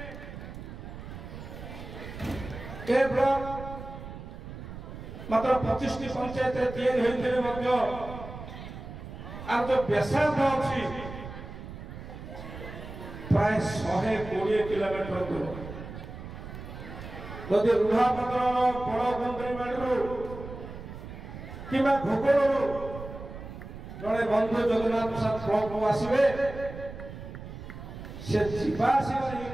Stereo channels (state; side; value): noise; right; rumble, 11 dB below the sound